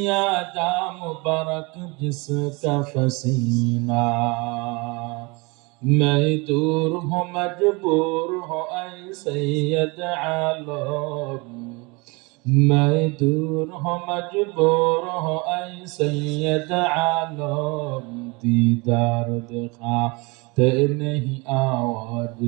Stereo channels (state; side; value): quieter; left; 27.3 dB